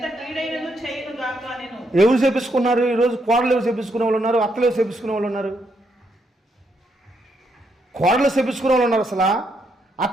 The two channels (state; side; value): normal; both; correlation 0.77